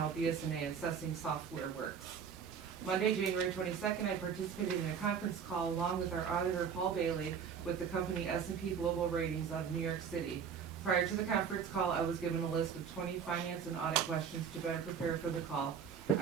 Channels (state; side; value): quieter; left; 7.1 dB